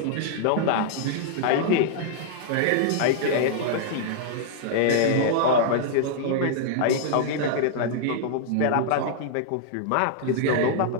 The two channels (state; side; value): different; both; correlation -0.01